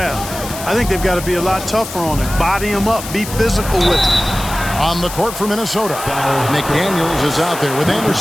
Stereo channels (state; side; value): noise; left; hiss, 11 dB below the sound